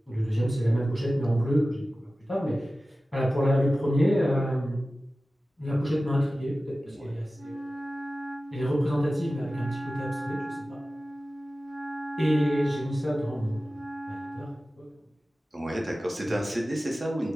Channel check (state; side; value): normal; both; correlation 0.95